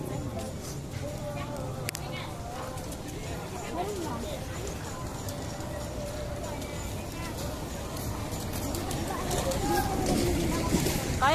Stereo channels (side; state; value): both; identical; correlation 1.00